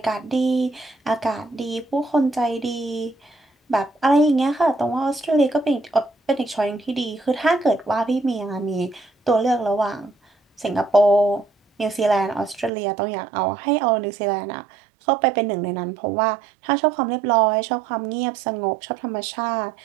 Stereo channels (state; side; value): drops out; left; at 12.7 s